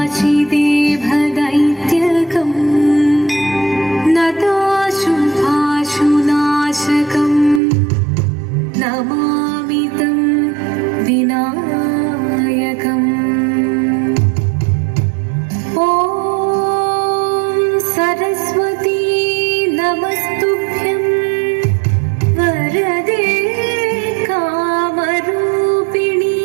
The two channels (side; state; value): left; drops out; at 7.6 s